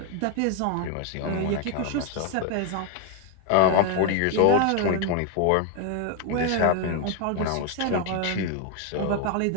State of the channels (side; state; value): both; different; correlation 0.01